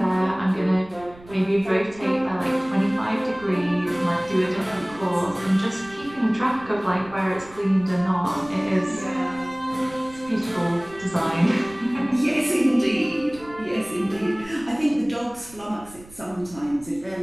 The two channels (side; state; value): right; noise; rumble, 21 dB below the sound